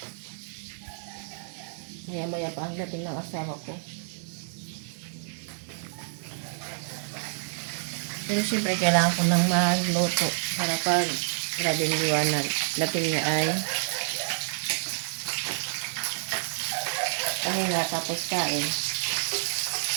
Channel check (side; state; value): left; silent; digital silence